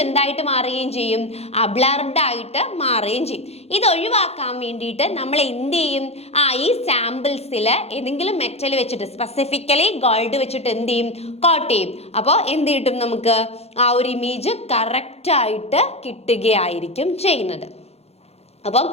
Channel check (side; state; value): right; late; 0.30 ms